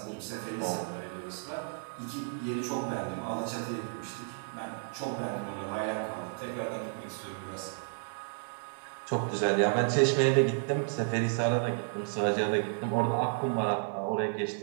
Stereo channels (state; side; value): silent; left; digital silence